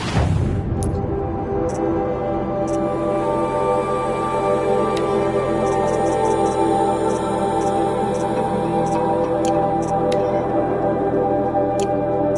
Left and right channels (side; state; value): both; identical; correlation 1.00